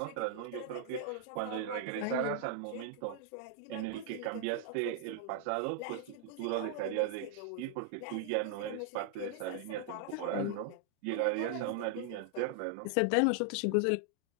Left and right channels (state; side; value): different; both; correlation 0.00